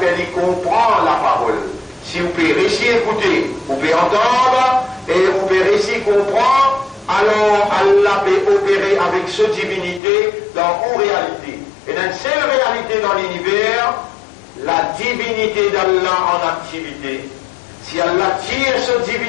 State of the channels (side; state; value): right; drops out; at 10.0 s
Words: fait lui comprendre la parole. Si vous pouvez réussir à écouter, vous pouvez entendre et vous pouvez réussir à comprendre, alors Allah peut opérer avec cette divinité dans vos réalités. Et dans une seule réalité dans l'univers, la divinité d'Allah en activité. Si Allah tire cette